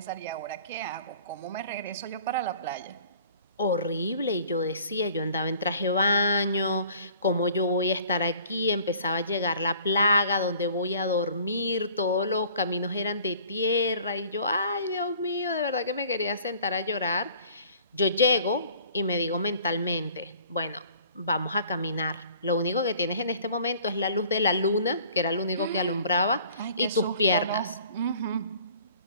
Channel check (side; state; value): both; inverted; correlation -0.52